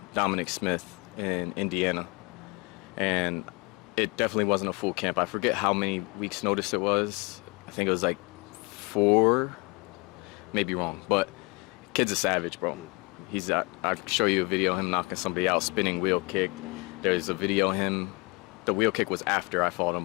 Dominic Smith in Indiana, and it definitely wasn't a full camp. I forget how many weeks notice it was. I think it was like 4, maybe wrong, but kid's a savage, bro. I'll show you a video of him knocking somebody out, spinning wheel kick. There's a video of him, the wheel kick was after I fought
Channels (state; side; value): quieter; right; 28.3 dB